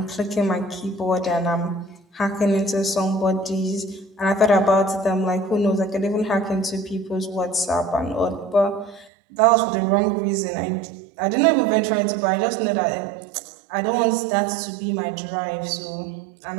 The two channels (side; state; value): left; drops out; at 9.1 s